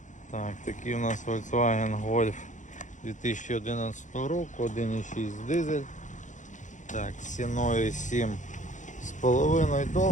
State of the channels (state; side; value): late; right; 0.36 ms